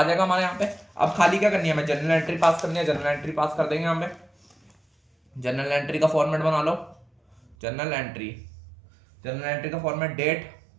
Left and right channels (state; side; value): drops out; left; at 7.6 s